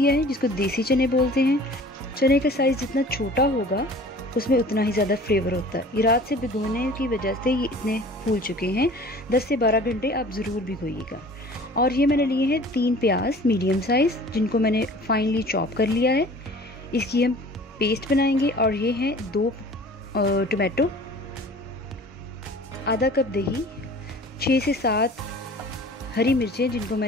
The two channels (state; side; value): normal; both; correlation 0.45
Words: है, जिसको देसी चने बोलते हैं। चने का साइज़ जितना छोटा होगा उसमें उतना ही ज़्यादा फ्लेवर होता है। ये रात से भिगोने की वजह से ये इतने फूल चुके हैं। 10 से 12 घंटे आप ज़रूर भिगोइएगा। और ये मैंने लिए हैं 3 प्याज मीडियम साइज़, जिनको मैंने फाइनली चॉप कर लिया है। इसकी हम पेस्ट बनाएंगे। और ये हैं 2 टमाटो, आधा कप दही, 6 से 7 हरी मिर्चें जिनको